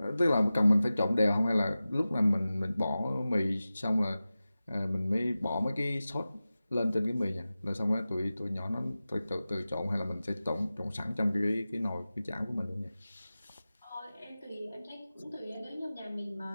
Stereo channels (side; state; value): both; inverted; correlation -0.95